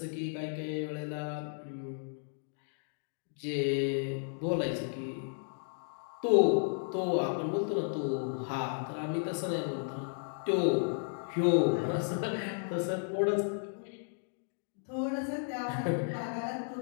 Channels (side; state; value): right; silent; digital silence